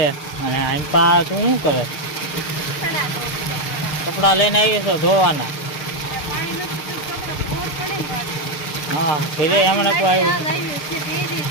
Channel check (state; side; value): late; right; 6.7 ms